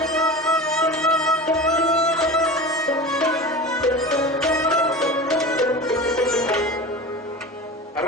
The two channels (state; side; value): normal; both; correlation 0.32